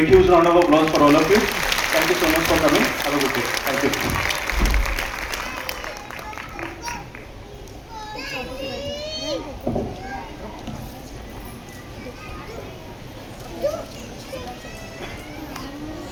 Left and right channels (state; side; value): identical; both; correlation 1.00